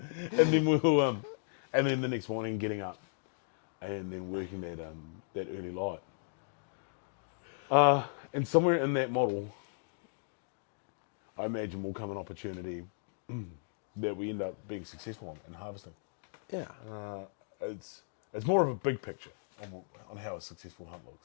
And then we'll and then the next morning getting up and then working that early light. And somewhere in that model, I imagine will come an opportunity that we end up being successful on harvesting. Yeah. It's more of a big picture on how a successful hunt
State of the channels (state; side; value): silent; right; digital silence